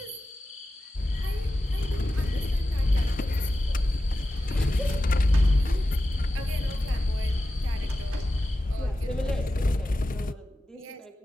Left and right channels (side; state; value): both; normal; correlation 0.93